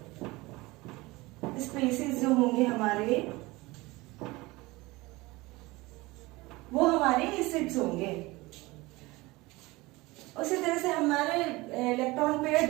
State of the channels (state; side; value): quieter; left; 21.7 dB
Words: स्पेसीज जो होंगे हमारे, वो हमारे एसिड्स होंगे। उसी तरह से हमारे इलेक्ट्रॉन पेयर